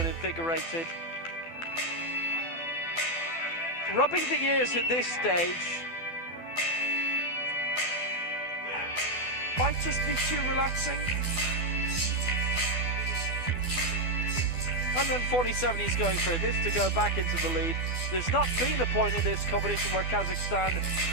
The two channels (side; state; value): right; late; 12 ms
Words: invigorated. Rubbing the ears at this stage might just be too relaxing. 147 he's going for this to go back into the lead. There's not been a point in this competition where Kazakhstan